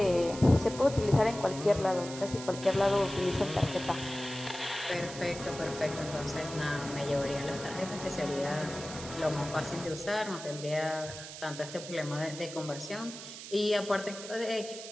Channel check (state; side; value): noise; right; hiss, 11 dB below the sound